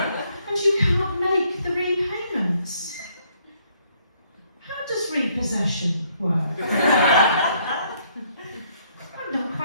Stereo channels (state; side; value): inverted; both; correlation -0.68